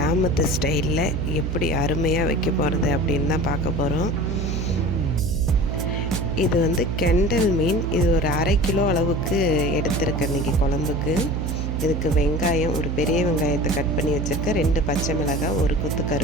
ஸ்டைலில் எப்படி அருமையாக வைக்க போகிறது அப்படின்னு தான் பார்க்க போகிறோம். இது கெண்டல் மீன். இது ஒரு 1/2 கிலோ அளவுக்கு எடுத்திருக்கேன் இன்றைக்கி குழம்புக்கு. இதுக்கு வெங்காயம், ஒரு பெரிய வெங்காயத்தை கட் பண்ணி வச்சுருக்கேன், 2 பச்சை மிளகாய், ஒரு கொத்து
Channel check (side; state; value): right; noise; hum, 1 dB below the sound